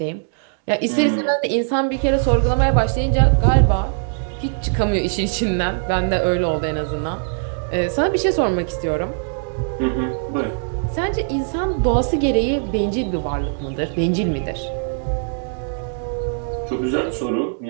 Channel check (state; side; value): silent; left; digital silence